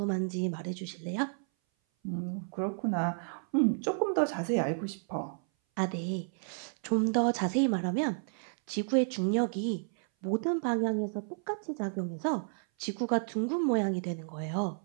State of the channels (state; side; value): silent; left; 57 dB below the other